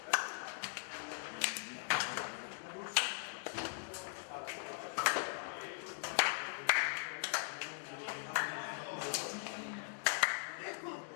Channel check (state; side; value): silent; right; digital silence